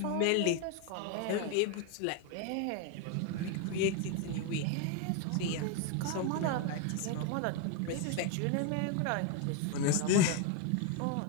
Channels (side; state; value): both; different; correlation 0.01